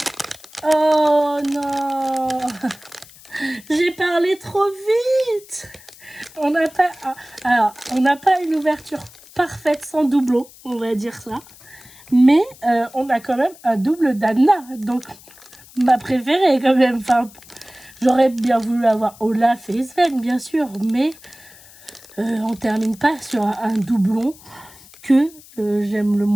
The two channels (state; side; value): noise; left; hiss, 22 dB below the sound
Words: Oh non! J'ai parlé trop vite! On n'a pas... Alors, on n'a pas une ouverture parfaite sans doublon, on va dire ça. Mais on a quand même un double d'Anna, donc ma préférée quand même. Enfin, J'aurais bien voulu avoir Olaf et Sven, bien sûr, mais on termine pas sur un doublon que j'aime le